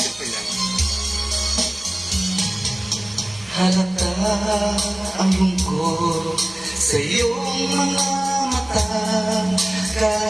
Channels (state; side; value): noise; left; hum, 30 dB below the sound